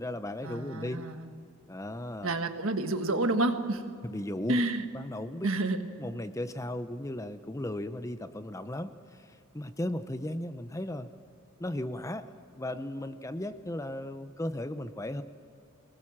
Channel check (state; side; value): normal; both; correlation 0.53